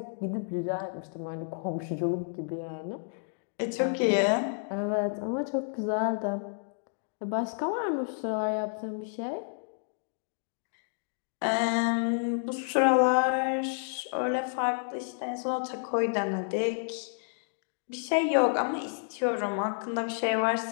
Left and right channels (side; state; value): right; silent; digital silence